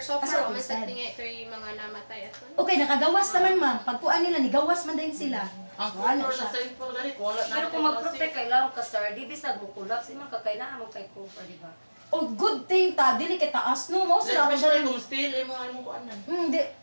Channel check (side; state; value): both; inverted; correlation -1.00